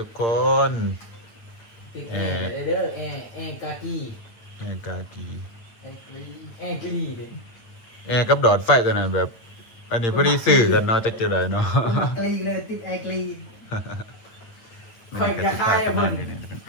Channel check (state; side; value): late; right; 8.9 ms